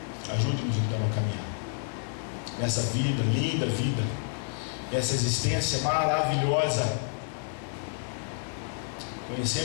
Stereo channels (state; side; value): silent; right; digital silence